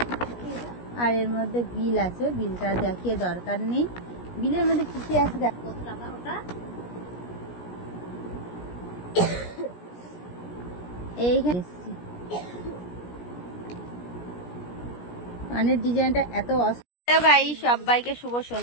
আর এর মধ্যে বিল আছে, বিলটা দেখিয়ে দরকার নেই। বিলের মধ্যে কি কি আছে দেখ। কত টাকা ওটা? এইখানে কানের ডিজাইনটা এত সবাইকে শুভ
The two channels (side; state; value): right; late; 17 ms